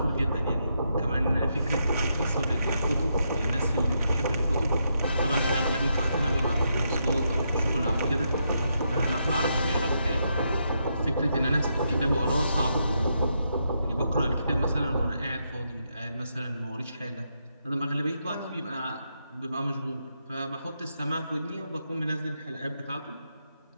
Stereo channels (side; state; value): both; inverted; correlation -0.80